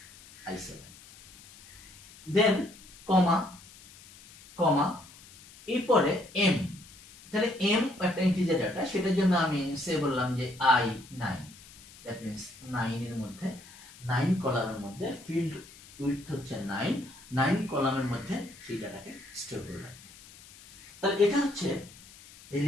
I7। দেন কমা কমা এরপরে এম। তাহলে এম একটা ইন্টিজার ডাটা, সেটার জন্য আমি সে বললাম যে I9, দ্যাট মিন্স 9 এর মধ্যে 9 কলামের মধ্যে ফিল্ড উইডথ হচ্ছে 9 কলামের মধ্যে সেই ডাটাকে স্টোর করে রাখবে। তাহলে এটা হচ্ছে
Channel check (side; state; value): left; noise; hiss, 21 dB below the sound